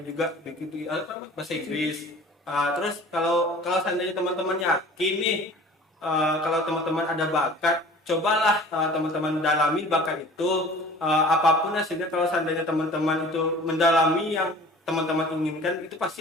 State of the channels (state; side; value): normal; both; correlation 0.45